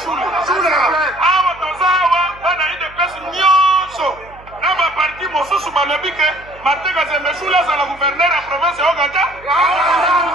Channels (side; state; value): right; noise; hum, 22 dB below the sound